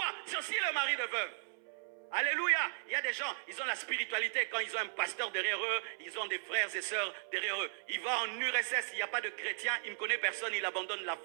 C'est aussi le mari de veuve. Alléluia. Il y a des gens, ils ont la spiritualité. Quand ils ont un pasteur derrière eux, ils ont des frères et sœurs derrière eux. Il va en URSS, il n'y a pas de chrétien, il ne connaît personne, il abandonne la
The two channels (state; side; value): silent; left; 53 dB below the other